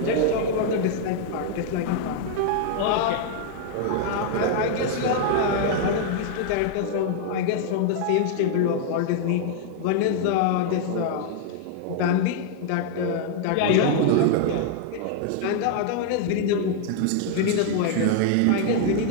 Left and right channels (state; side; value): different; both; correlation 0.00